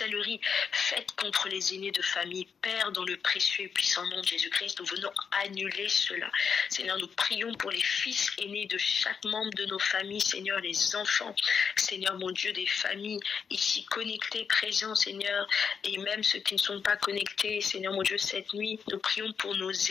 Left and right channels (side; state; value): right; quieter; 6.4 dB